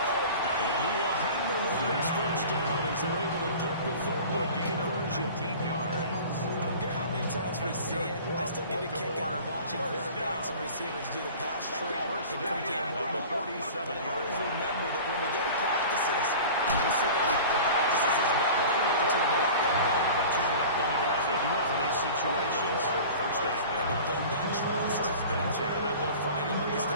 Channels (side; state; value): both; inverted; correlation -0.39